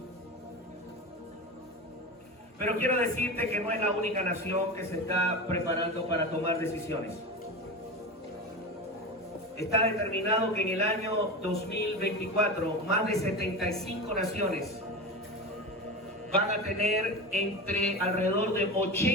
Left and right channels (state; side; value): normal; both; correlation 0.25